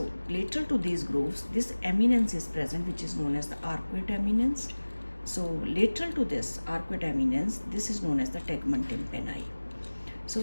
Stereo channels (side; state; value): both; inverted; correlation -1.00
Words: lateral to these grooves, this eminence is present, which is known as the arcuate eminence. So lateral to this arcuate eminence, this is known as the tegmen tympani.